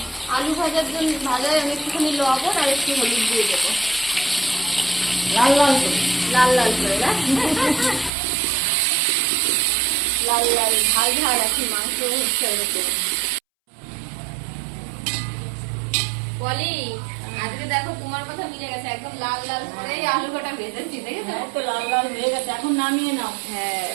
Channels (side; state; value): left; drops out; at 8.1 s